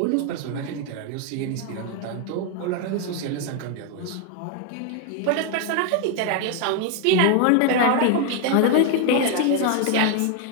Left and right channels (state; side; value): different; both; correlation 0.01